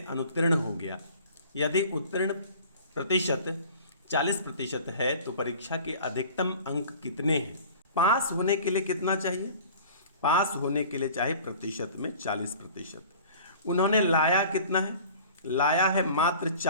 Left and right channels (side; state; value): both; inverted; correlation -0.44